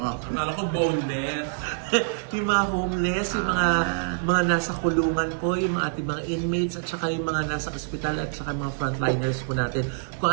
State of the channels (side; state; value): left; silent; 60 dB below the other